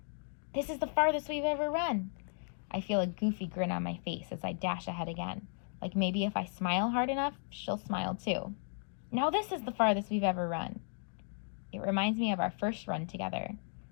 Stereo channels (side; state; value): right; silent; 54 dB below the other